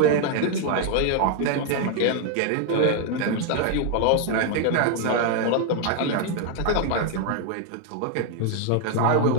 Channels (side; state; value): both; different; correlation 0.00